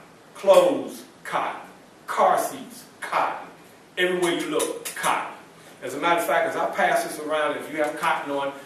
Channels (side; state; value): both; identical; correlation 1.00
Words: Clothes, cotton. Car seats, cotton. Everywhere you look, cotton. As a matter of fact, as I pass this around, if you have cotton on,